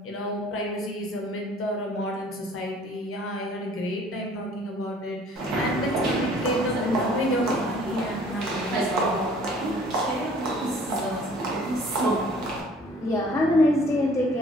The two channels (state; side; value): normal; both; correlation 0.54